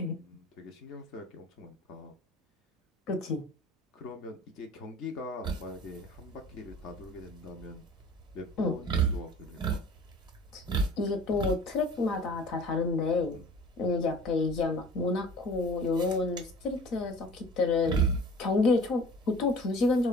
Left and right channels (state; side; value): normal; both; correlation 0.45